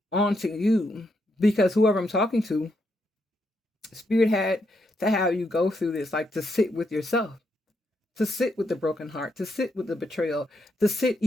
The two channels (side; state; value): both; normal; correlation 0.79